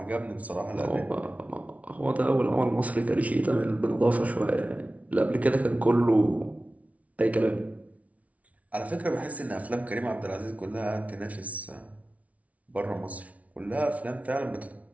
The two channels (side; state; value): left; late; 0.068 ms